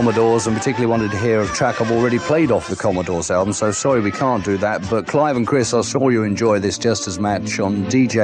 and particularly wanted to hear a track I've already played off the Commodores album, so sorry we can't do that, but Clive and Chris, I saw you enjoy this just as much on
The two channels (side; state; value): both; identical; correlation 1.00